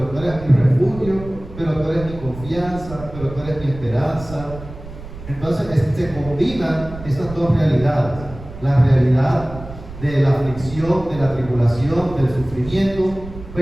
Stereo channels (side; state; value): right; noise; rumble, 14 dB below the sound